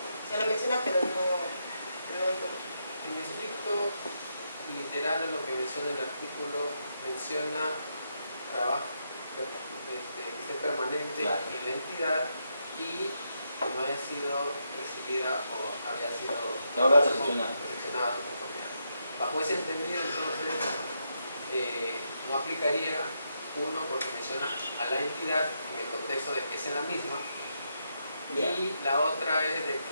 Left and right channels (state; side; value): inverted; both; correlation -0.81